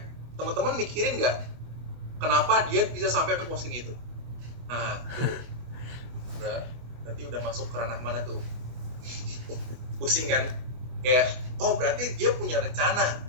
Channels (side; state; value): left; late; 24 ms